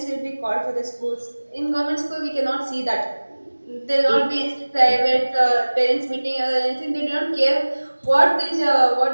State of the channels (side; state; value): both; inverted; correlation -1.00